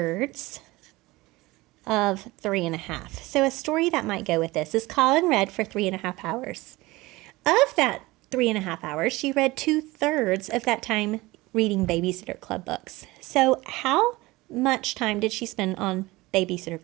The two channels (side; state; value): left; quieter; 20.6 dB